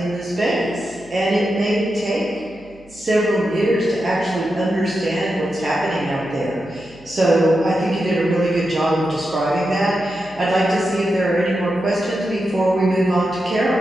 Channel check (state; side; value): noise; right; hum, 26 dB below the sound